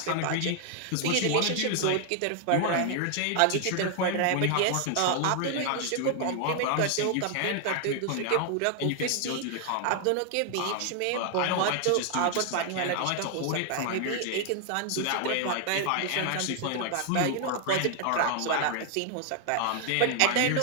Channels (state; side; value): different; both; correlation 0.00